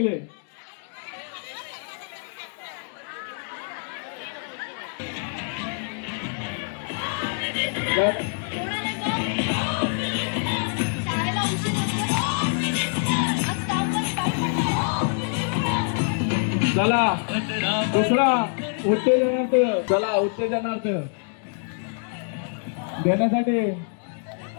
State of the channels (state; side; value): silent; right; 57 dB below the other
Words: चला दुसरा उत्तेजनार्थ, चला उत्तेजनार्थ देण्यासाठी